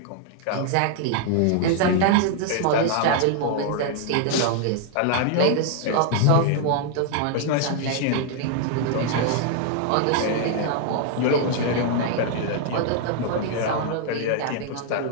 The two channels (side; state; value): both; different; correlation 0.00